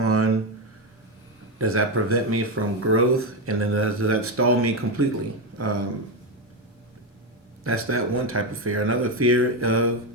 Does that prevent me from growth? And then does that stall me completely? That's that one type of fear. Another fear of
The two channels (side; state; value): both; normal; correlation 0.11